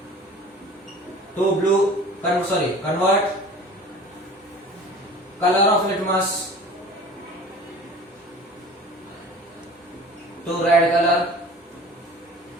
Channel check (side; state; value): both; normal; correlation 0.42